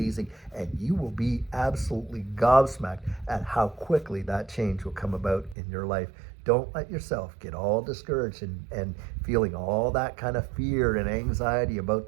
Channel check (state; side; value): drops out; left; at 5.6 s